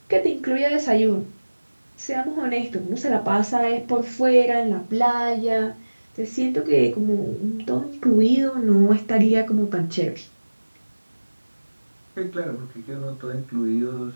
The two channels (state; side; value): inverted; both; correlation -1.00